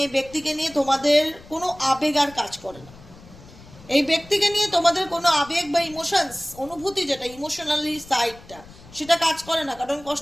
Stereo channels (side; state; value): left; noise; rumble, 21 dB below the sound